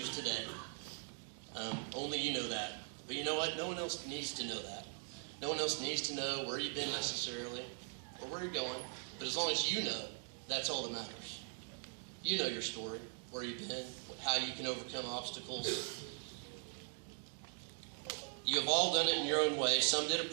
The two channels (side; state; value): left; silent; 51 dB below the other